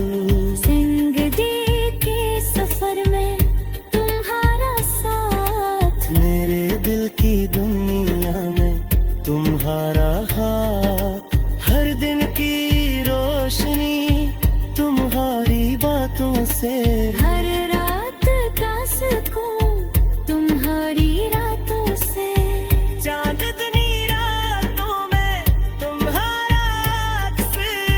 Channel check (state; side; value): identical; both; correlation 1.00